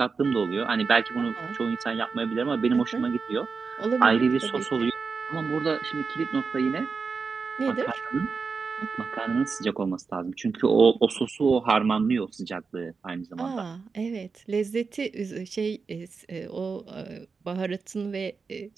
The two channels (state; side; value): quieter; left; 4.9 dB